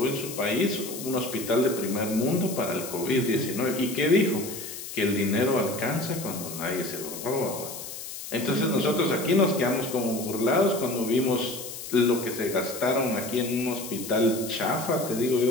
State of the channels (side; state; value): left; noise; hiss, 10 dB below the sound